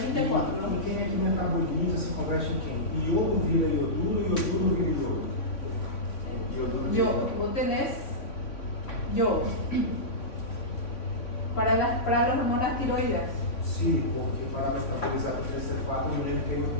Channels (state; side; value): late; right; 3.5 ms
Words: E quem é que metaboliza, se converte em quem? Iodo vira ioduro, ioduro vira iodo. Ioduro vira Yo, iodo. vos tenés yodo para las hormonas tiroides. Sim, porque para metabolizar o T3T4, eu lembro que é